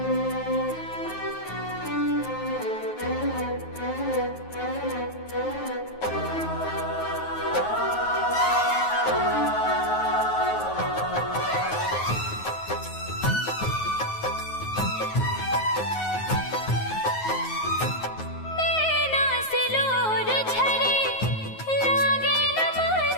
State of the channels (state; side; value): late; right; 9.4 ms